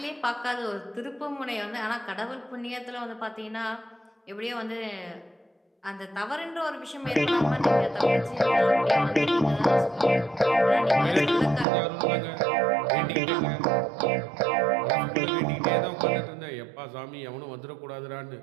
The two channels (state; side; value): drops out; left; at 11.7 s